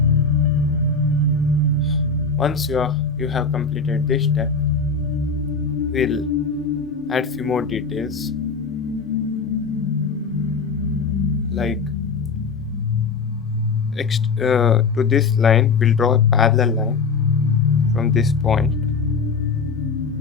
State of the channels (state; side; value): quieter; right; 4.7 dB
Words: Once you have completed this step, we'll add few more details like to this line we'll draw a parallel line from this point,